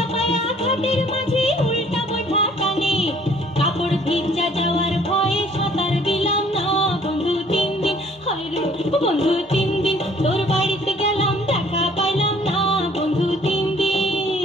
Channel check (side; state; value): both; normal; correlation 0.57